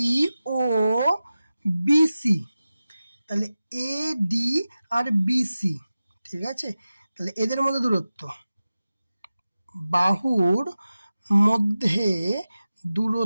ও BC, তাহলে AD আর BC, ঠিক আছে। তাহলে এদের মধ্যে দূরত্ব, বাহুর মধ্যে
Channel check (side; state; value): both; inverted; correlation -0.95